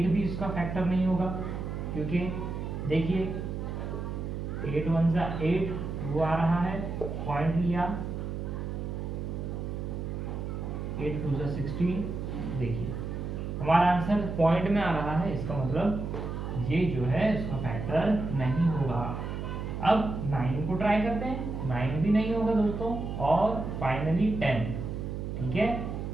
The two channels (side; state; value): right; noise; hum, 5 dB below the sound